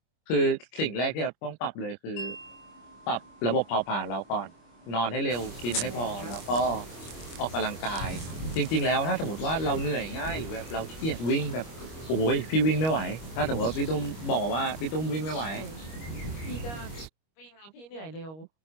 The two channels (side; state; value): right; late; 25 ms